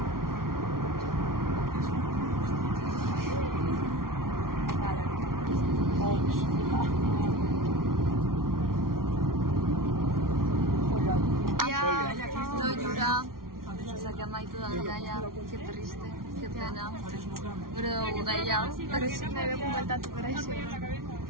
Loiura. Osea, que amaitu da gaia, que triste, que pena. Gure dugu gaia. Pero si me veo bueltatu corresión.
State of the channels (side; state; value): left; late; 0.93 ms